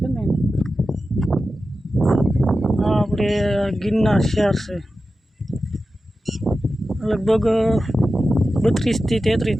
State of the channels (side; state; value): both; normal; correlation 0.93